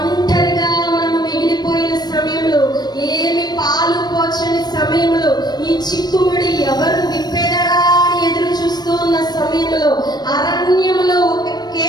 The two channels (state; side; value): late; right; 0.19 ms